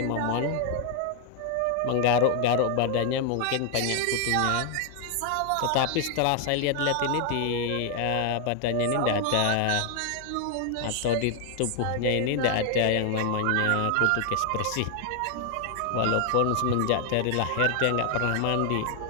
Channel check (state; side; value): different; both; correlation 0.00